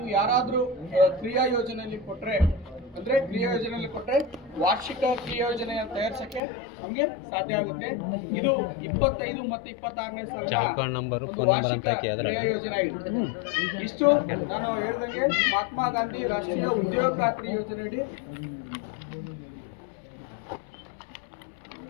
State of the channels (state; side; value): drops out; right; at 6.4 s